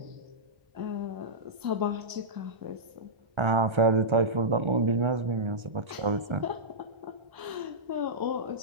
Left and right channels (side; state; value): left; late; 1.3 ms